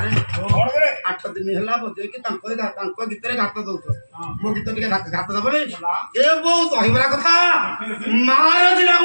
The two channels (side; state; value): both; inverted; correlation -1.00